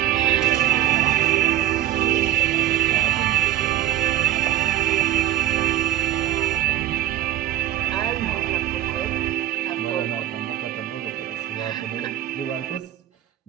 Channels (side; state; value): left; quieter; 13.0 dB